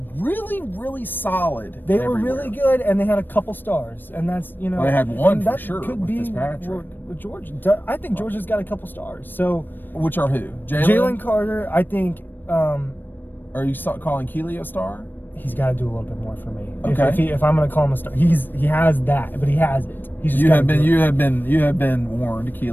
really, really solid. They were really good, and they had a couple stars, and that's, you know. Well, they had one for sure could with be Fitzpatrick. With Georgia. I think Georgia's got a couple stars. So. Which are who? Jalen Carter, I think. Are you calling Keely a star? He's got to do a little bit more for me. Okay. If I'm going to call him a star, he has that, but he has it. He's just you have been warned,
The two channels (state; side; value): late; right; 0.093 ms